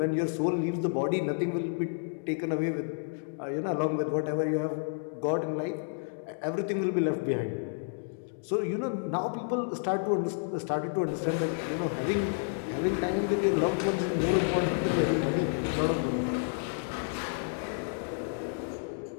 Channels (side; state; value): right; silent; digital silence